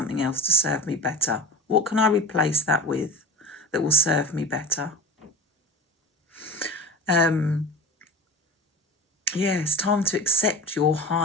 else to serve me better. What can I replace that with that will serve me better? Yeah, it's time to accept your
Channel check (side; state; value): both; normal; correlation 0.32